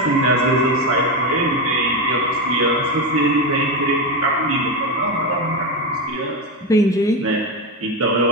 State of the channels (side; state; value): both; normal; correlation 0.13